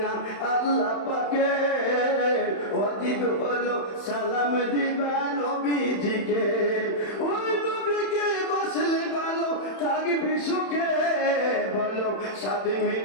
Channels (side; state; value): right; late; 31 ms